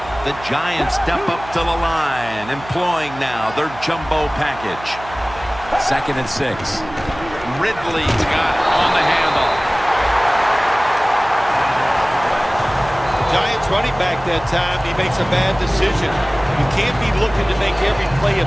The Giants step up to the line, employing now their jumbo package. 2nd and 6. Ridley's got it on the handle. Giants running back that time, he makes a bad decision. You can't be looking to make every play a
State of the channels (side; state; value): right; noise; hum, 16 dB below the sound